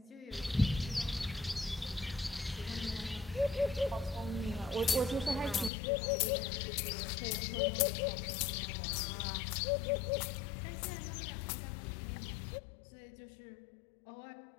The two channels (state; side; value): drops out; right; at 5.7 s